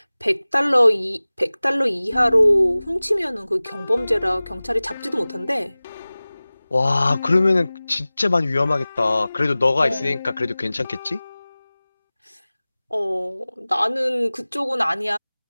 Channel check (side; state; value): both; inverted; correlation -0.98